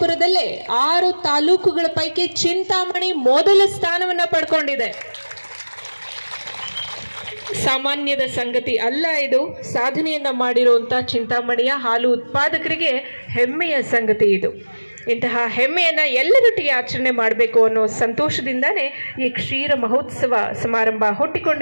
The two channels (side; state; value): both; inverted; correlation -1.00